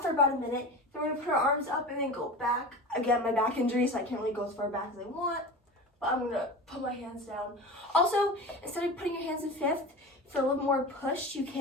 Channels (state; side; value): normal; both; correlation 0.31